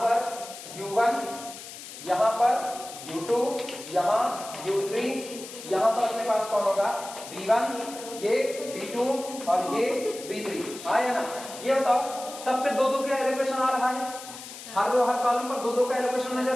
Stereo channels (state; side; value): noise; left; hiss, 13 dB below the sound